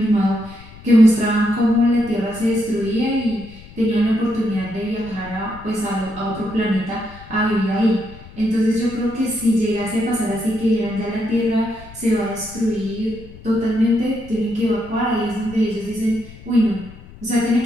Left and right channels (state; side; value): noise; left; rumble, 19 dB below the sound